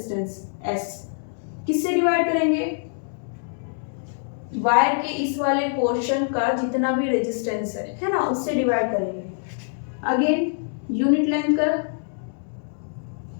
S किससे डिवाइड करेंगे, वायर के इस वाले पोर्शन का जितना भी रेजिस्टेंस है ना, उससे डिवाइड करेंगे। अगेन यूनिट लेंथ का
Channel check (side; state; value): right; silent; digital silence